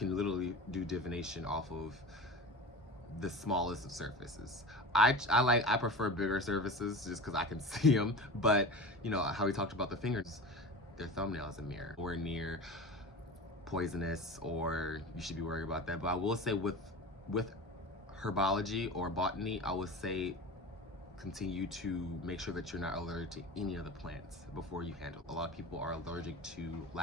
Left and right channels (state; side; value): normal; both; correlation 0.32